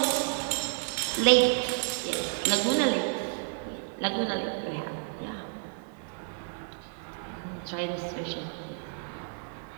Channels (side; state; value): left; silent; digital silence